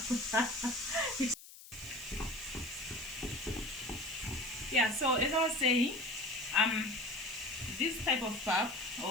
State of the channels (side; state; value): left; noise; hiss, 18 dB below the sound